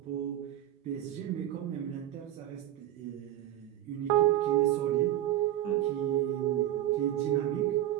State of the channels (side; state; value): left; quieter; 12.9 dB